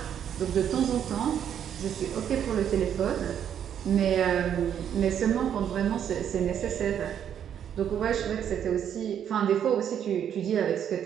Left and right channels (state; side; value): quieter; left; 9.1 dB